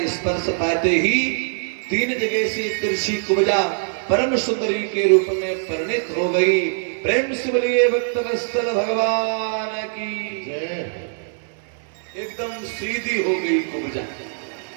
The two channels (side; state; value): left; silent; digital silence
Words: स्पर्श पाते ही 3 जगह से तिरछी कुब्जा परम सुंदरी के रूप में परिणित हो गई। प्रेम से बोलिए भक्तवत्सल भगवान की जय। एकदम सीधी हो गई कुब्जा,